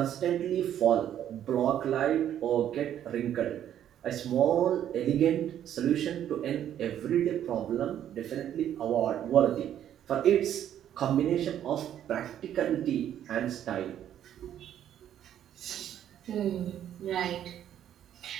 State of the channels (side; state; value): left; quieter; 10.6 dB